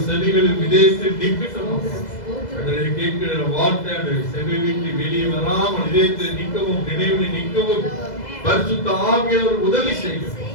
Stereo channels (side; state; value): right; late; 2.0 ms